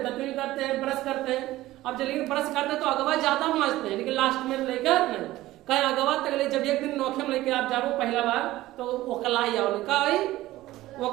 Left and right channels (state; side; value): quieter; left; 16.5 dB